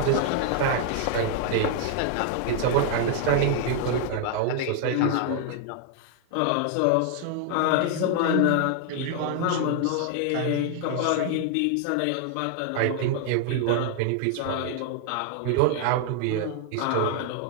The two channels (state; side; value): different; both; correlation 0.00